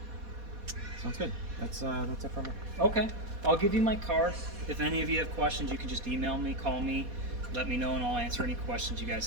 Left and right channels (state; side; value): late; left; 4.2 ms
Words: Sounds good. That's it for me. Okay, I'll give you my card. If any of you have questions, you can just email me, call me, let me know, and I'll answer any questions you